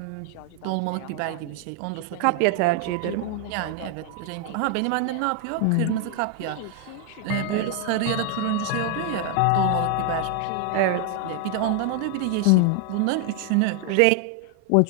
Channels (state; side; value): different; both; correlation 0.00